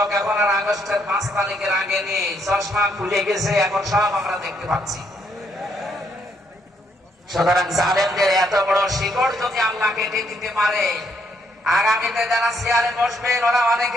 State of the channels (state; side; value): normal; both; correlation 0.72